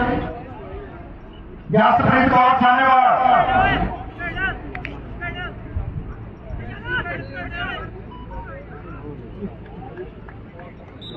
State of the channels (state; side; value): identical; both; correlation 1.00